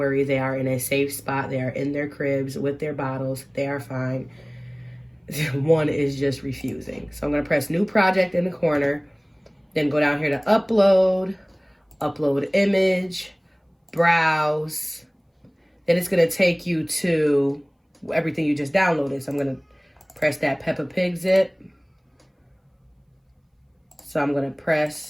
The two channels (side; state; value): both; identical; correlation 1.00